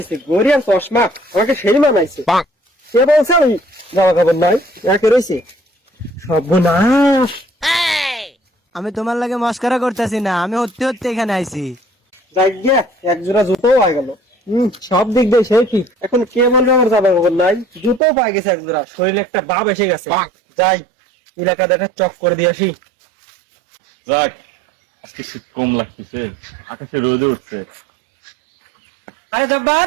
গরিয়ার চশমা আমাকে সেই মানাইছে। সে বলছে আমি জামা কাপড় নাই, একে রয়েছে সর্বনাশ। আমি তোমার লাগে মস্করা করতেছি না, আমি হতে হতে এখানে আইছি। যাই গিয়া এক জোড়া জুতোও পাই গেল। সব দিক দিয়ে সে কি, এখন কে বলবে আমার জামা কাপড় নাই? জুতোও পাই গেছে এক জোড়া, শরীরে একটা ভাব এসে গেছে। যাই এলাকাতে একটা চক করে দিয়ে আসি। যাক, আজকে শীত কম লাগতেছে, আকাশে রোদে উঠছে। আরে জব্বার,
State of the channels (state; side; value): drops out; left; at 18.0 s